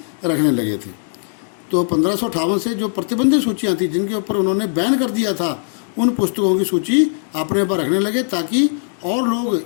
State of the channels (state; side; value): silent; right; digital silence